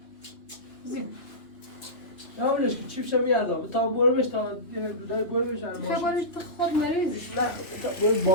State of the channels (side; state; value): right; late; 2.9 ms